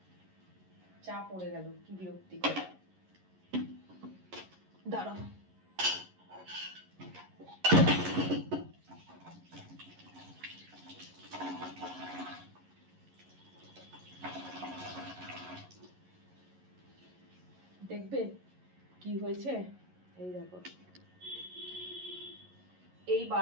চা পড়ে গেল, কি বিরক্তিকর। দাঁড়াও, দেখবে কি হয়েছে। এই দেখো, এই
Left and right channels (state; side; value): late; left; 11 ms